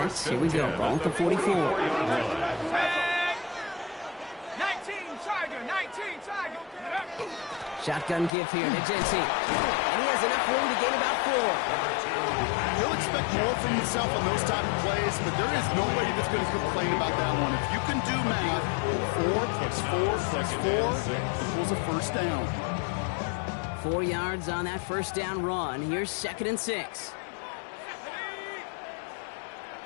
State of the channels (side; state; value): right; drops out; at 8.3 s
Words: Here we go. Ball at the 44. 19 Tiger. 19 Tiger. Shotgun give here to Genty. And he has enough room to gain about 4. He'll expect more from himself on those type of plays, but there is nobody that's going to complain about that one. If you can do math, 4 + 4 + 4 equals a 1st down. 4 yards on that 1st down run. Here's 2nd and 6.